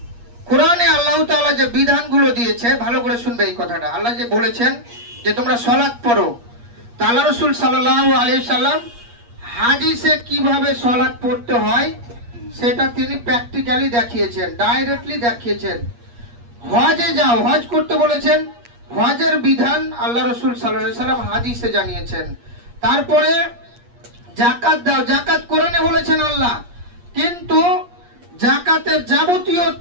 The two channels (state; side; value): late; left; 8.5 ms